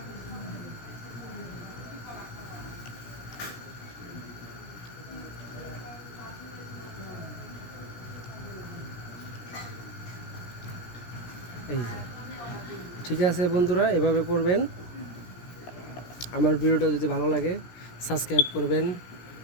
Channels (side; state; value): right; late; 17 ms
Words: এই ঠিক আছে বন্ধুরা, এভাবে করবেন। আমার ভিডিওটা যদি ভালো লাগে সাবস্ক্রাইব করবেন,